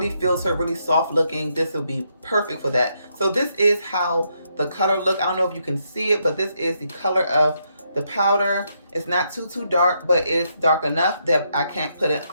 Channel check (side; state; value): both; inverted; correlation -0.78